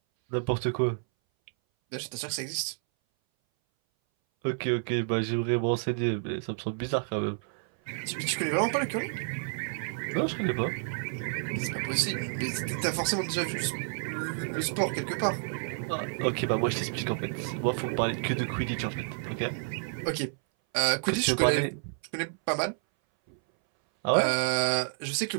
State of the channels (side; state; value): left; silent; 58 dB below the other